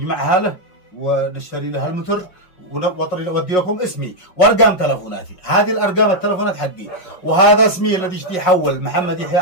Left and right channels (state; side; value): late; right; 5.5 ms